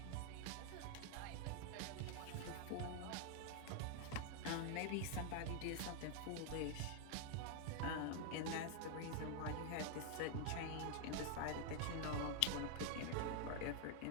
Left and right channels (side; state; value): both; different; correlation 0.00